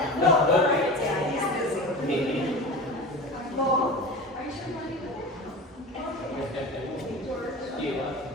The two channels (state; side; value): normal; both; correlation 0.32